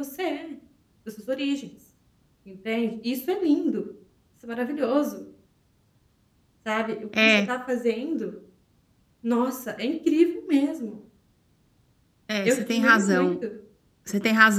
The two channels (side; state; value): both; identical; correlation 1.00